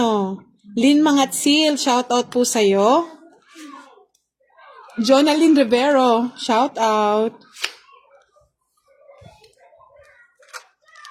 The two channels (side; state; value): both; identical; correlation 1.00